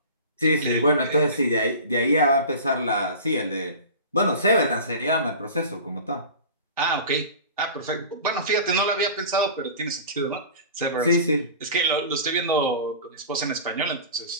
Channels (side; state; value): both; inverted; correlation -0.36